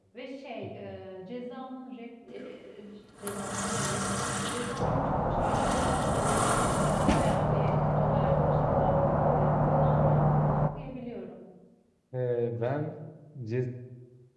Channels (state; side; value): identical; both; correlation 1.00